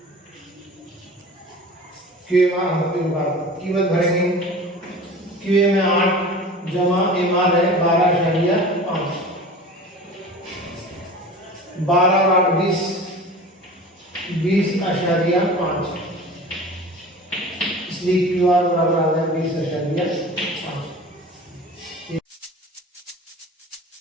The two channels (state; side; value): normal; both; correlation 0.38